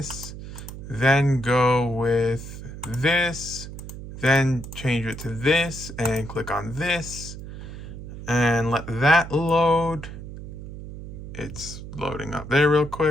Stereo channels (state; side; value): noise; right; hum, 11 dB below the sound